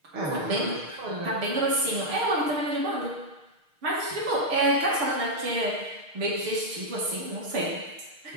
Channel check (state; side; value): late; left; 6.5 ms